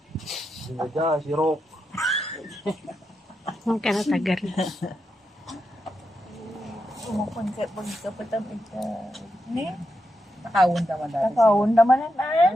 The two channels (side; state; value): both; normal; correlation 0.85